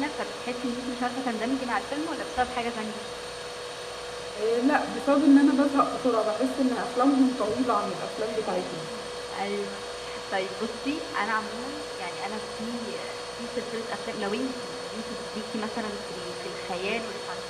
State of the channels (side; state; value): both; identical; correlation 1.00